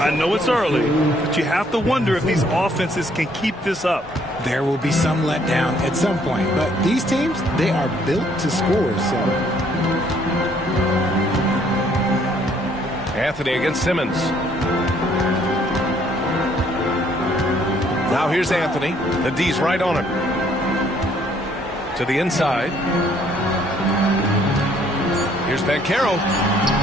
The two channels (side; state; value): both; normal; correlation 0.64